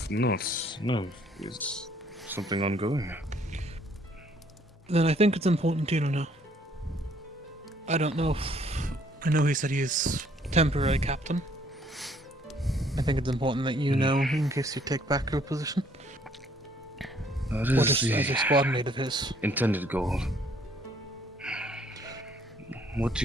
not. No, it's something ongoing. Then I think it's important to you to know. I don't know if... I know he said he's temporary captain. I think it's important that you know in case you take back your position. That Or is just the as a squad mate of his. intended goal. What do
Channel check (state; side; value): normal; both; correlation 0.63